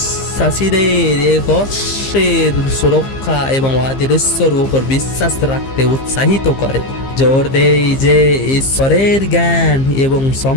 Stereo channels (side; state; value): right; late; 15 ms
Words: এক অশ্বের সুরক্ষা এবং অদৃশ্যর উপর বিশ্বাস রাখতে উৎসাহিত করে। জোর দেয় যে ঈশ্বরের জ্ঞান এবং